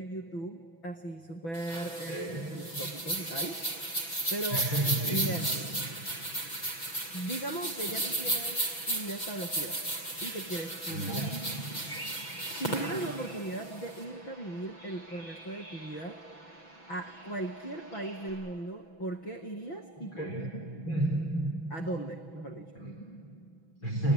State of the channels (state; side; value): late; right; 6.0 ms